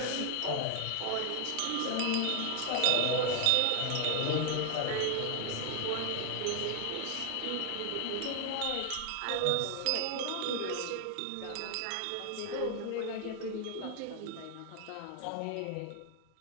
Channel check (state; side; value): different; both; correlation 0.00